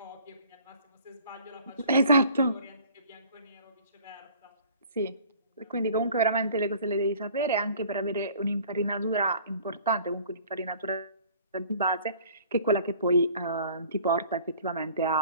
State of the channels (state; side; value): inverted; both; correlation -0.50